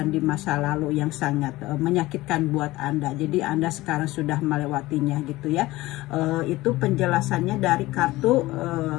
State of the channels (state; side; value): quieter; right; 18.6 dB